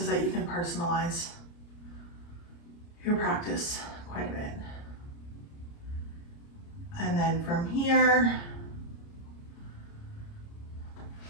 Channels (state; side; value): late; right; 29 ms